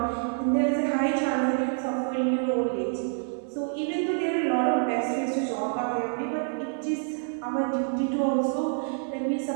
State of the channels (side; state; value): left; silent; 60 dB below the other